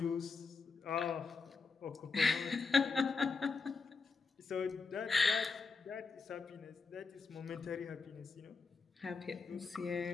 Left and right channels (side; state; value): right; quieter; 4.6 dB